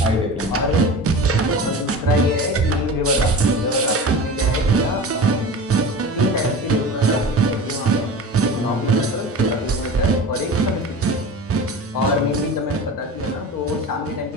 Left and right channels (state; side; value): normal; both; correlation 0.33